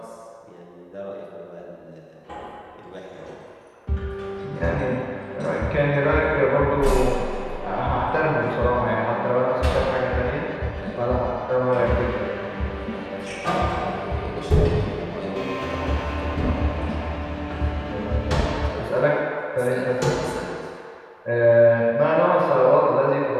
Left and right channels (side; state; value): both; identical; correlation 1.00